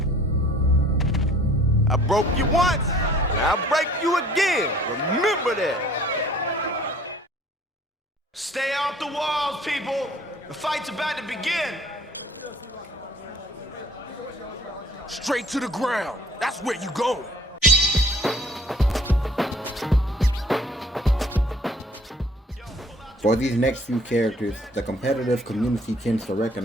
I broke you once, and I'll break you again. Remember that. Stay off the walls, people. The fight's about to begin. Straight to the ground. That's where you going. For these next few characters, the competitive community tends to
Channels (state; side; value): normal; both; correlation 0.54